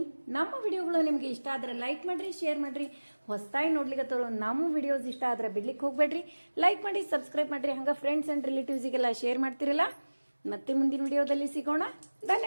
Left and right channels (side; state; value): both; inverted; correlation -1.00